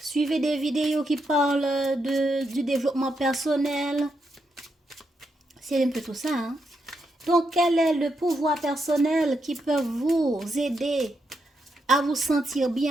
des vidéos qui parlent du développement personnel. C'est un peu tout ça. Hein? Donc, quel est le pouvoir personnel qui peut vous aider à vous sentir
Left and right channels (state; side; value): normal; both; correlation 0.82